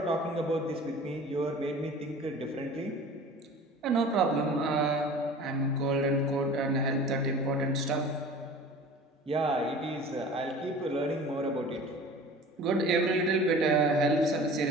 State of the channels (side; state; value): both; normal; correlation 0.41